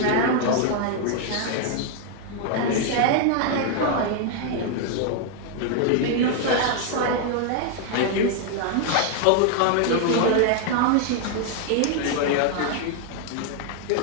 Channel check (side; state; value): both; different; correlation 0.00